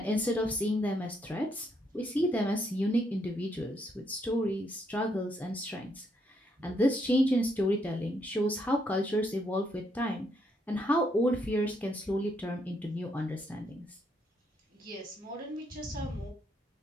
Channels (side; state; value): both; normal; correlation 0.75